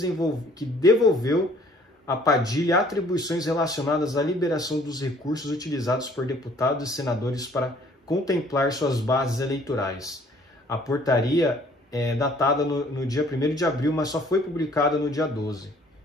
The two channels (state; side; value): normal; both; correlation 0.58